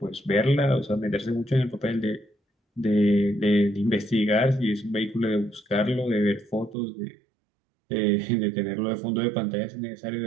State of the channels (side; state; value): left; drops out; at 6.8 s